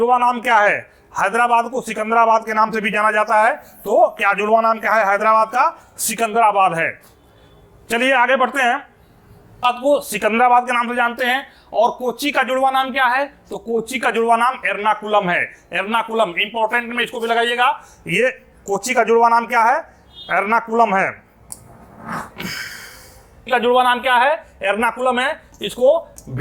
नाम क्या है? हैदराबाद को सिकंदराबाद के नाम से भी जाना जाता है। तो क्या जुड़वा नाम क्या है? हैदराबाद का सिकंदराबाद है। चलिए आगे बढ़ते हैं। आपको सिकंदराबाद के नाम से जानते हैं। और कोच्चि का जुड़वा नाम क्या है? तो कोच्चि का जुड़वा नाम एर्नाकुलम है। एर्नाकुलम इंपॉर्टेंट में इसको भी लगाइएगा। ये कोच्चि का जुड़वा नाम क्या है? एर्नाकुलम है। का जुड़वा नाम क्या है? एर्नाकुलम है। इसको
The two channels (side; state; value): both; identical; correlation 1.00